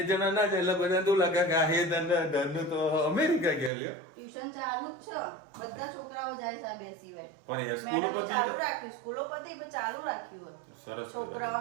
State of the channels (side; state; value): left; drops out; at 3.7 s